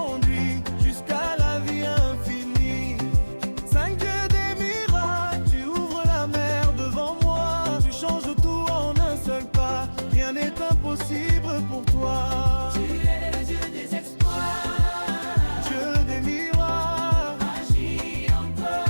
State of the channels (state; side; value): inverted; both; correlation -1.00